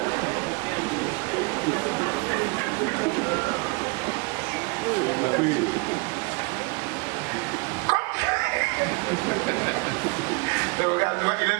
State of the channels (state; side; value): quieter; left; 29.9 dB